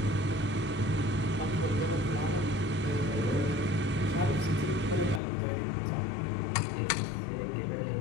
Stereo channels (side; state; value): right; drops out; at 5.2 s